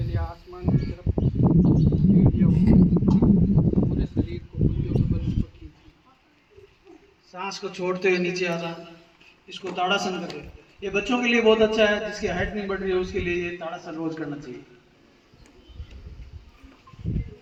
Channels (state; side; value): identical; both; correlation 1.00